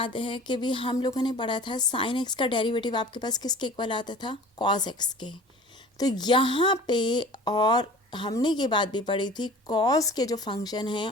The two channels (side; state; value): both; normal; correlation 0.42